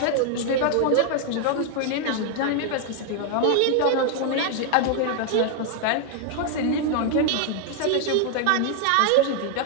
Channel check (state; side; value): different; both; correlation 0.00